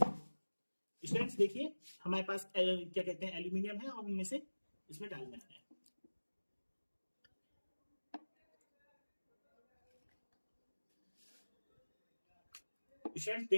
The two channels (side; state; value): both; inverted; correlation -1.00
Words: स्टूडेंट्स देखिए, हमारे पास क्या कहते हैं, एल्यूमिनियम है और हमें से इसमें डालना है। स्टूडेंट्स